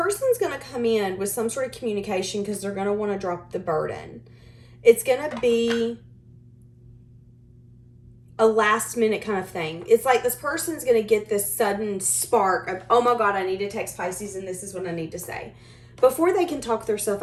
going to come in with some sort of communication because they're going to want to drop the burden. It's going to be a last minute kind of thing. It's like this person's going to get this sudden spark of, oh my God, I need to text Pisces and this is what I need to say. Before they can talk themselves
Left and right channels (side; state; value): both; identical; correlation 1.00